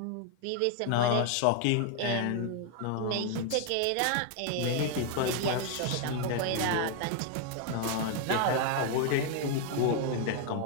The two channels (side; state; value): both; different; correlation 0.00